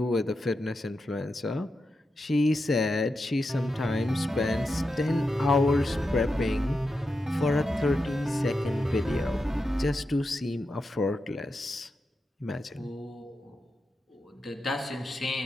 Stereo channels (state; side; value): normal; both; correlation 0.88